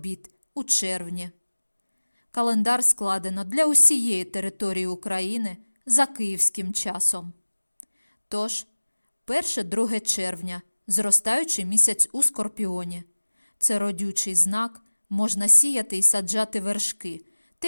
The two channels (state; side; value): inverted; both; correlation -1.00